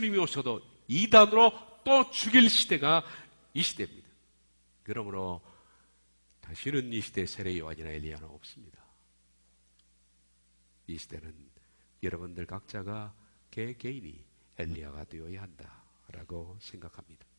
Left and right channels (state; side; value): inverted; both; correlation -1.00